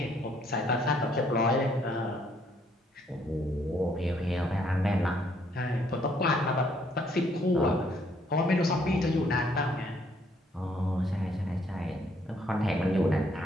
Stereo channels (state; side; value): normal; both; correlation 0.67